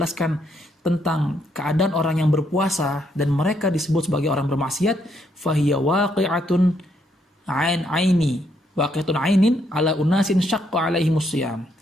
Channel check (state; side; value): normal; both; correlation 0.74